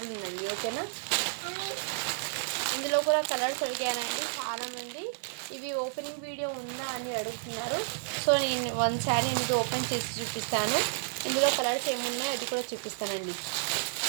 ఉందండి, ఓకేనా. ఇందులో కూడా కలర్స్ అడిగానండి చాలామంది, ఇవి ఓపెనింగ్ వీడియో ఉందా అని అడుగుతున్నారు. సో నేను 1 శారీ అనేది ఓపెన్ చేసి చూపిస్తాను. ఇందులో కలర్స్ ఏమున్నాయో అది కూడా చూపిస్తానండి,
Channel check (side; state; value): left; silent; 57 dB below the other